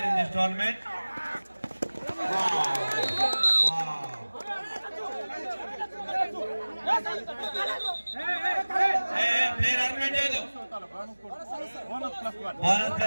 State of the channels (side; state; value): both; inverted; correlation -1.00